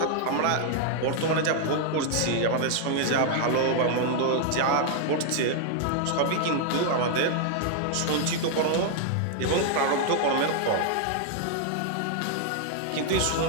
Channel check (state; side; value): different; both; correlation 0.00